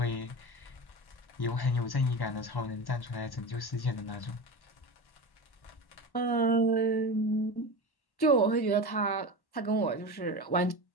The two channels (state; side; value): late; right; 1.1 ms